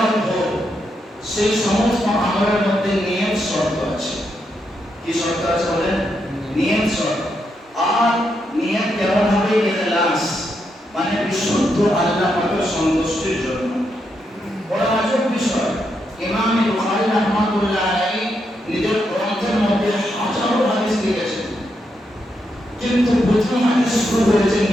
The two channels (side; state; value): both; normal; correlation 0.81